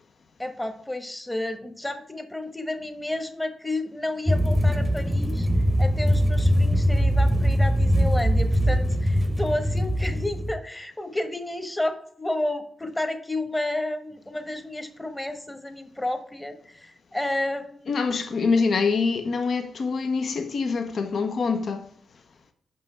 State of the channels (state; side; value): normal; both; correlation 0.93